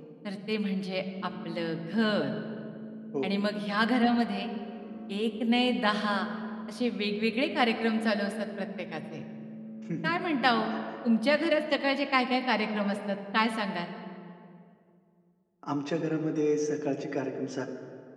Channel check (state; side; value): identical; both; correlation 1.00